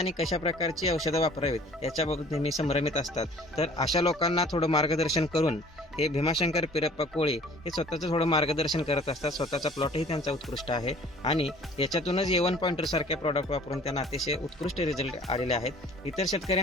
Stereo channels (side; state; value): both; normal; correlation 0.51